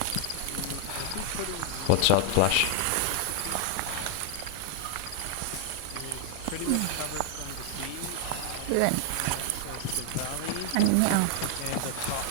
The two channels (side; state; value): both; different; correlation 0.00